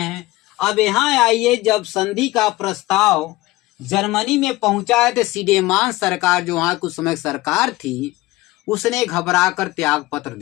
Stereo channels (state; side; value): quieter; right; 19.1 dB